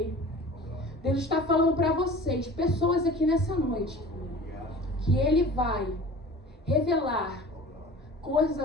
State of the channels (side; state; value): both; normal; correlation 0.41